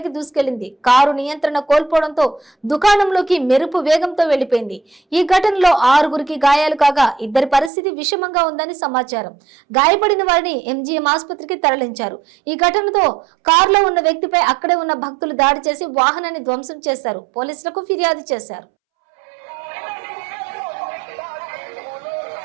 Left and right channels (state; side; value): drops out; left; at 7.7 s